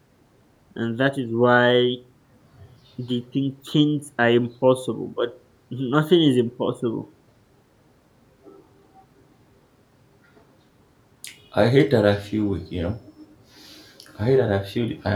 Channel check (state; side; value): identical; both; correlation 1.00